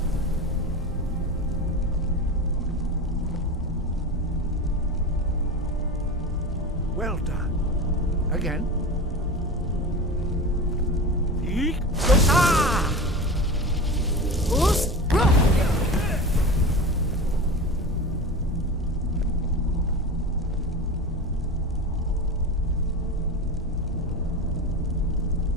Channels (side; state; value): both; normal; correlation 0.28